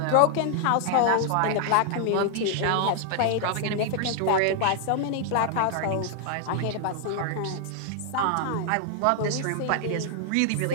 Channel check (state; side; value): different; both; correlation 0.00